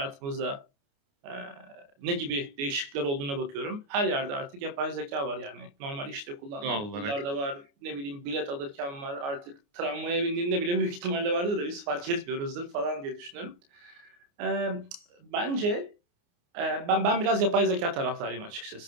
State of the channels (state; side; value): late; left; 29 ms